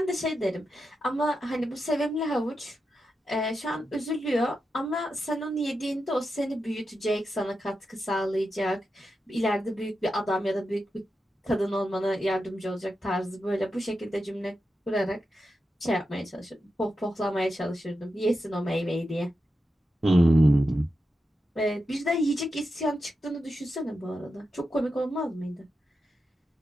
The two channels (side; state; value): both; normal; correlation 0.88